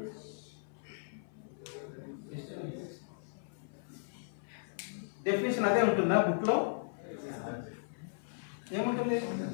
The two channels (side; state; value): right; silent; 53 dB below the other